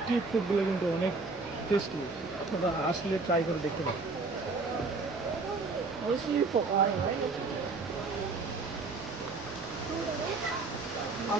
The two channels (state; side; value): quieter; left; 3.8 dB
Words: ফুডগুলো কিন্তু অনেক টেস্টি। আপনারা আসলে ট্রাই করে দেখতে পারেন। আর